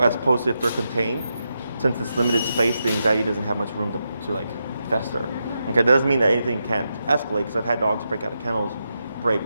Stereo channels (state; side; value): inverted; both; correlation -0.86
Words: as opposed to if they're contained. Since it's limited space, the anxiety doesn't have much room to like fester. Okay, that doesn't mean that anything can't escalate, because I've had dogs break out of kennels,